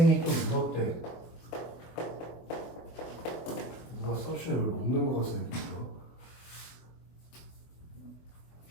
또 물었대. 누가 서션을 먹는 거 같아 이거.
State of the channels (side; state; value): right; late; 24 ms